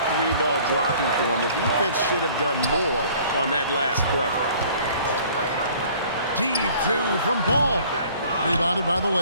3-ball dropping for him, the defense should have done more on that last play. Deep 2 from Ball. Rebounded by the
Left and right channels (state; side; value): inverted; both; correlation -0.53